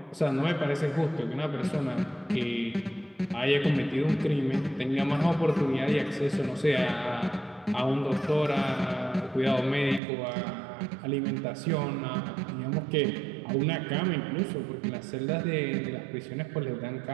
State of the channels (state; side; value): drops out; left; at 10.0 s